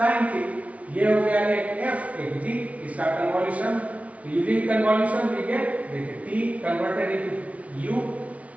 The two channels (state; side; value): late; left; 0.066 ms